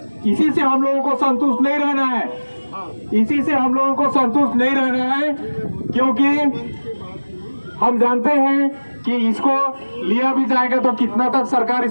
इसी से हम लोगों को संतुष्ट नहीं रहना है, इसी से हम लोगों को संतुष्ट नहीं रहना है, क्योंकि हम जानते हैं कि इसको लिया भी जाएगा तो कितना तक सरकार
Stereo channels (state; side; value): inverted; both; correlation -1.00